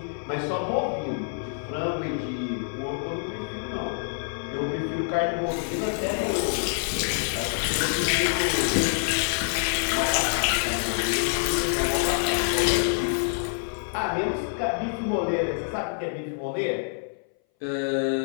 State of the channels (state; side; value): silent; right; 59 dB below the other